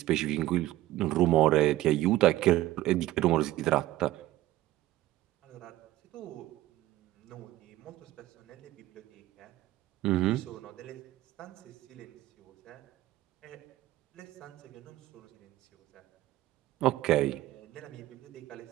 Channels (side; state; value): left; quieter; 15.6 dB